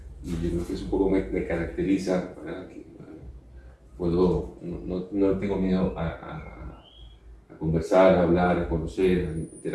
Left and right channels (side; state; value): both; identical; correlation 1.00